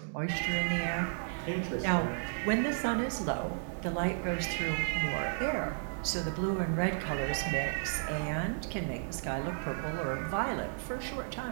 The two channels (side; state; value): left; silent; digital silence